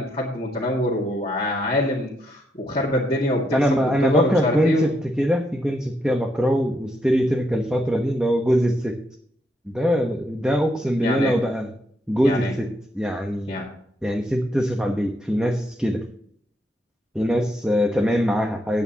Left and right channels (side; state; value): both; normal; correlation 0.78